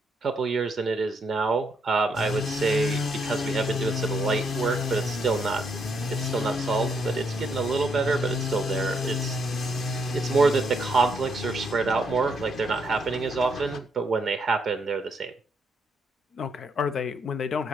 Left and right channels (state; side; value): normal; both; correlation 0.75